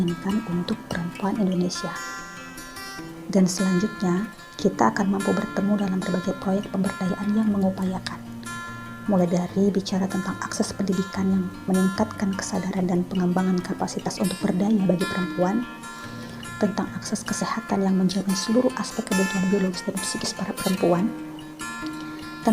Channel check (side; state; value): both; identical; correlation 1.00